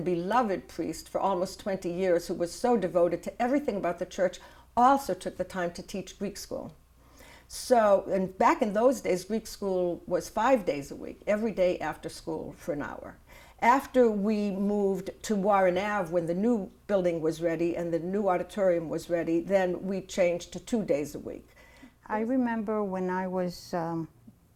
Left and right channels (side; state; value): both; identical; correlation 1.00